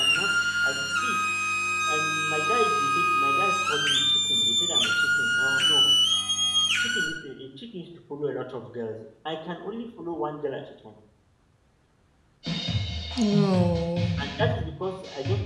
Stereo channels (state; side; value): identical; both; correlation 1.00